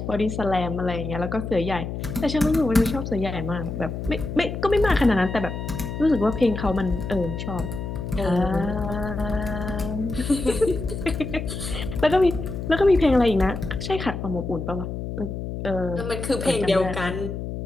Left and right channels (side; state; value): left; noise; hum, 6 dB below the sound